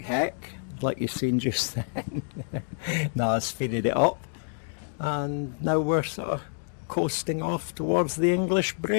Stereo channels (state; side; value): silent; right; digital silence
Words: heck, like you've seen just then. Now I've speeded it up, and now we're sort of coasting off towards the English